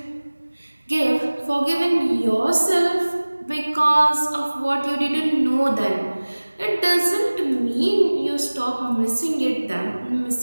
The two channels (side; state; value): both; inverted; correlation -1.00